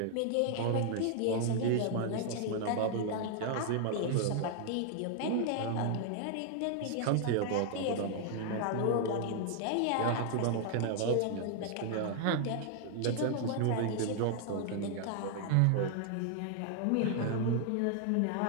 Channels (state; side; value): different; both; correlation 0.00